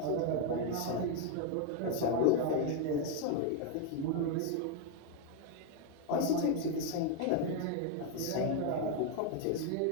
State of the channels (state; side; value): different; both; correlation 0.01